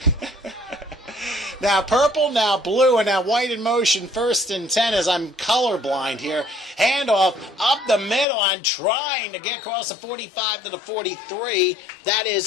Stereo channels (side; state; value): right; drops out; at 8.2 s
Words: now purple, now blue, and now white in motion, 1st and 10 as I'm colorblind here. Handoff up the middle. I'm trying to get across the 45 to the 43. That